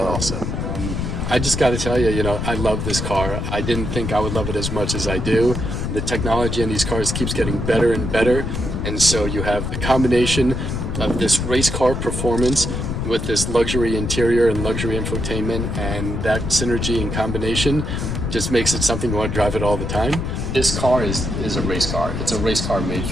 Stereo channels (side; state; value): left; noise; rumble, 3 dB below the sound